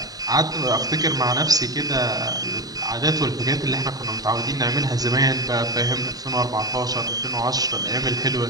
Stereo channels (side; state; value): left; late; 0.18 ms